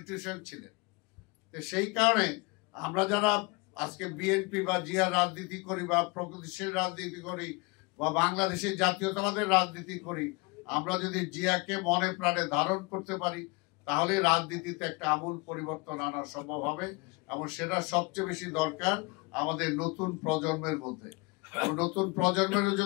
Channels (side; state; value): right; quieter; 26.8 dB